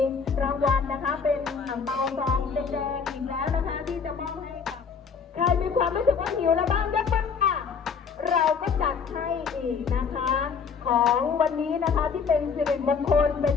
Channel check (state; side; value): quieter; right; 5.9 dB